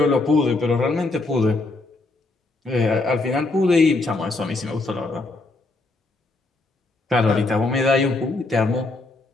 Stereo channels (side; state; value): right; quieter; 3.2 dB